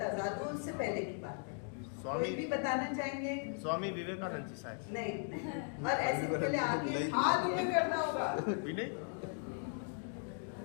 आजाद हुआ उससे पहले की बात है। कोई भी बताना चाहेंगे? स्वामी विवेकानंद जी शायद। नहीं। और ऐसे पहले आगे हाथ ऊपर करना होगा।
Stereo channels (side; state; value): right; silent; 53 dB below the other